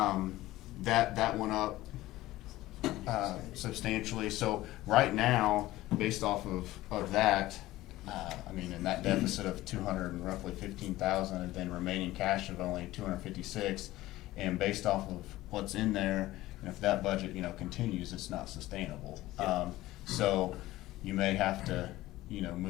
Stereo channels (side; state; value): right; quieter; 16.8 dB